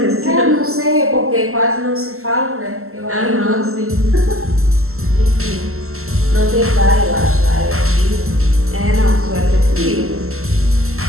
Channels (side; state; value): left; late; 0.63 ms